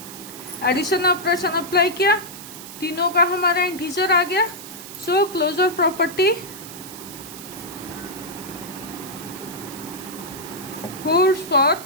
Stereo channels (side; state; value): right; noise; hiss, 13 dB below the sound